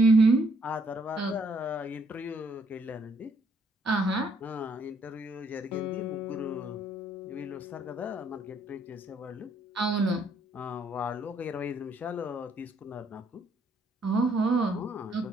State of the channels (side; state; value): both; normal; correlation 0.68